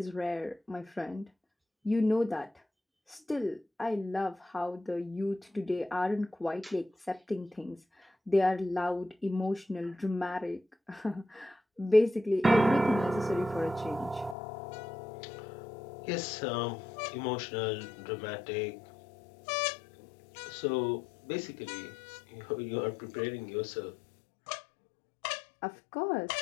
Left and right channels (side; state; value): right; drops out; at 14.4 s